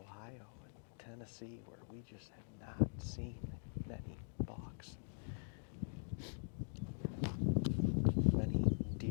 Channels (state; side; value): silent; right; digital silence